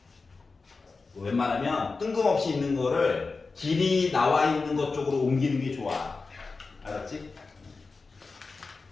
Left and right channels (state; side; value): quieter; right; 4.1 dB